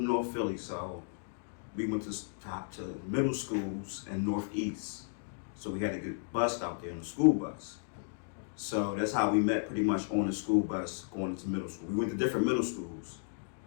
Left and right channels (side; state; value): right; silent; digital silence